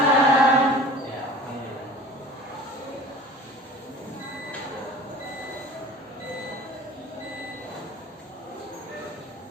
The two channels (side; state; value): both; normal; correlation 0.42